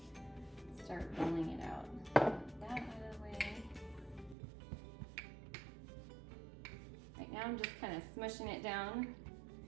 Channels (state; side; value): drops out; left; at 4.4 s